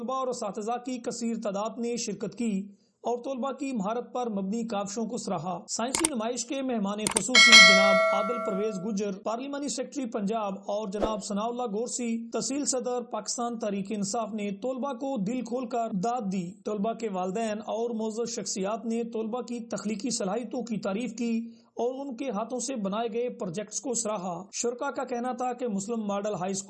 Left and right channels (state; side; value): identical; both; correlation 1.00